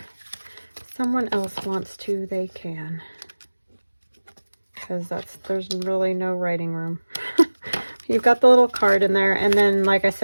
if someone else wants to, they can. Because there's really no writing room. You've got the little card in there, and then, like I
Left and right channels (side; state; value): both; inverted; correlation -1.00